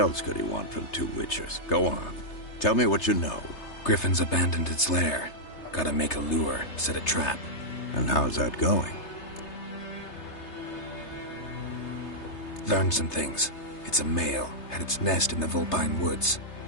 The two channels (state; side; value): late; right; 3.3 ms